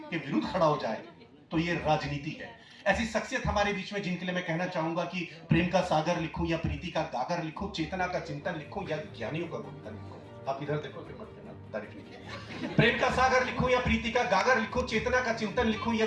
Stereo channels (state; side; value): identical; both; correlation 1.00